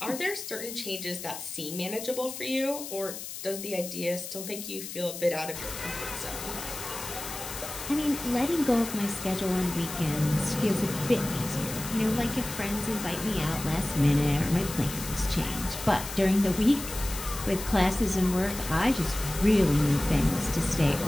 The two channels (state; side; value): noise; left; hiss, 9 dB below the sound